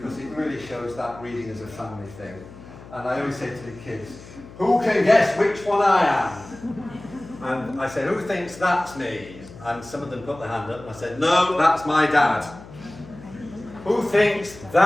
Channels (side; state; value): left; noise; hum, 18 dB below the sound